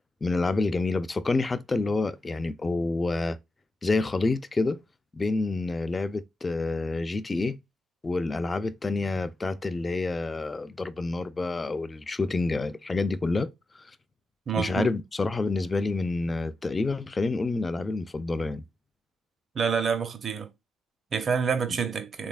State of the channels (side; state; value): both; normal; correlation 0.87